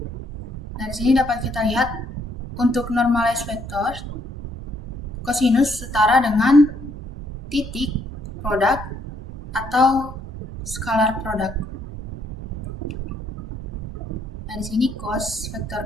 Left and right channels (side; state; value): both; normal; correlation 0.70